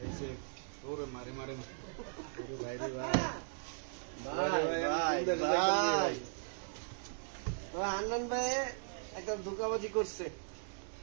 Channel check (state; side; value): silent; left; digital silence